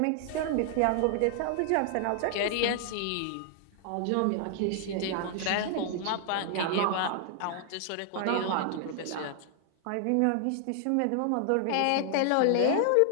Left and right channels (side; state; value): both; different; correlation 0.00